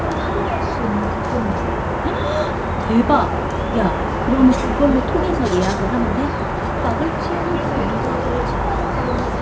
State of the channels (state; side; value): identical; both; correlation 1.00